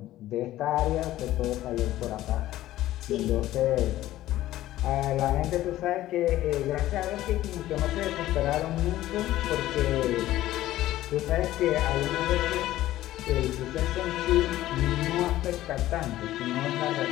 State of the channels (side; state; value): right; quieter; 14.7 dB